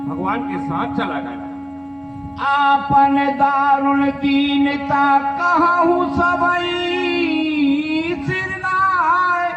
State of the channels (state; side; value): identical; both; correlation 1.00